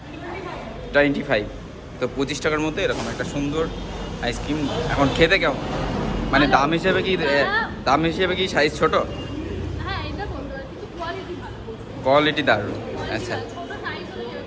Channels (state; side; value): identical; both; correlation 1.00